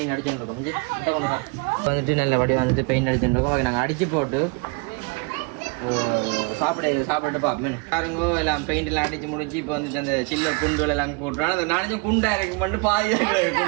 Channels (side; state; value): left; quieter; 31.7 dB